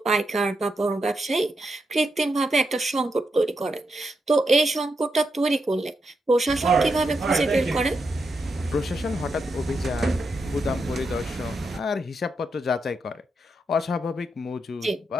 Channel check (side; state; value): both; normal; correlation 0.84